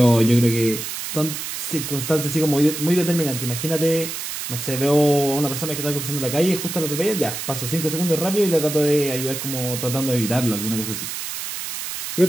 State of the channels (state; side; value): noise; right; hiss, 6 dB below the sound